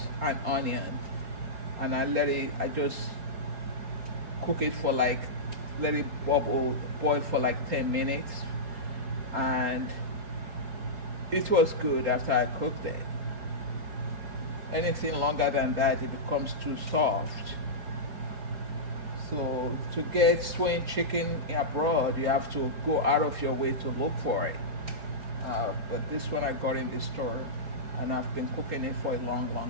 and onion, and I just cook it for like, let it boil for like 10 minutes, and it was good after I cooked it. Anything longer than that, it becomes too soft. So to get stewing chicken abroad, you have to go out of your way to look for it. But this one I got in the store, and I've been cooking it for a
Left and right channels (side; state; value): left; late; 4.8 ms